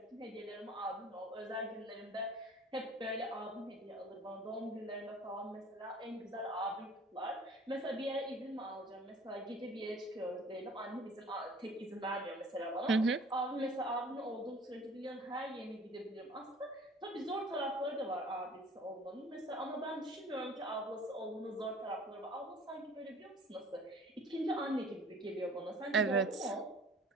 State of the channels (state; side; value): normal; both; correlation 0.49